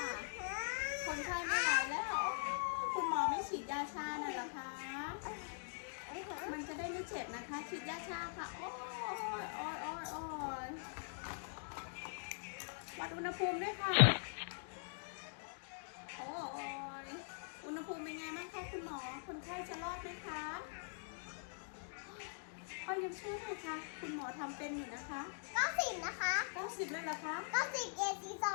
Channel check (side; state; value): right; silent; digital silence